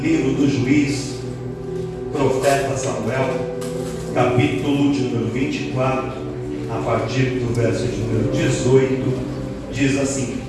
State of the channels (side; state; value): both; identical; correlation 1.00